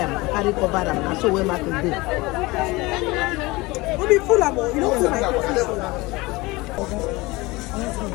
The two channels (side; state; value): right; quieter; 22.4 dB